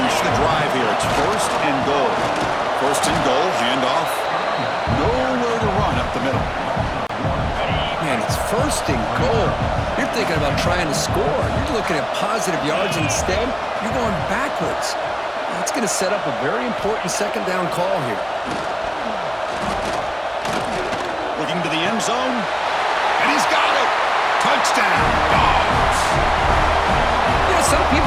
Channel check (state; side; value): identical; both; correlation 1.00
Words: the drive here. It's 1st and goal. 1st and goal, handoff. Nowhere to run up the middle. Man, it's 1st and goal. You're thinking about trying to score. You're looking at positive yards instead. You're going backwards. That's going to set up a very important 2nd down call here. Looking to the end zone, and he's got it. Touchdown, Dogs. You know, some